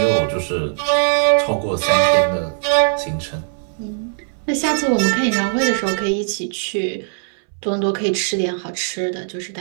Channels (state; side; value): silent; left; 64 dB below the other